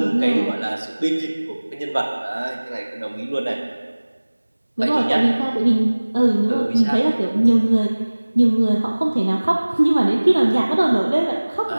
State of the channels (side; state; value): both; inverted; correlation -1.00